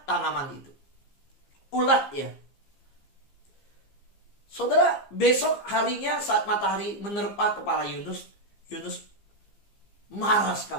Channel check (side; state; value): right; late; 15 ms